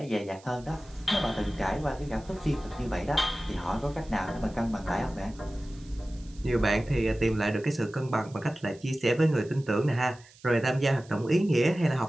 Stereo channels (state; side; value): noise; right; hiss, 25 dB below the sound